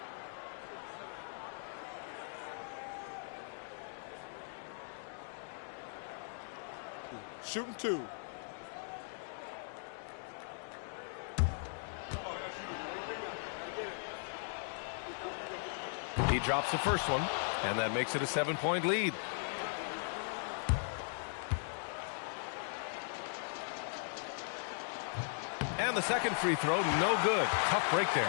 Shooting 2. He drops the first one, and that makes it a 7-point lead. And the second free throw, no good. Tough break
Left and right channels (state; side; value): silent; right; digital silence